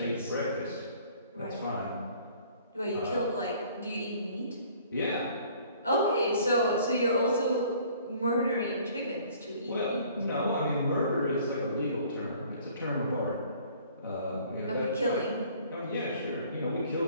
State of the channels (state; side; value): inverted; both; correlation -0.55